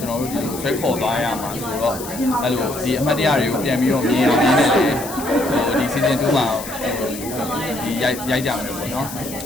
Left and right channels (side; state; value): left; noise; hiss, 11 dB below the sound